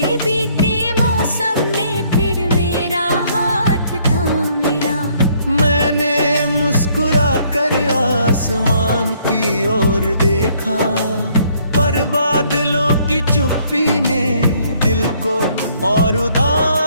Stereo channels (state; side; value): inverted; both; correlation -0.65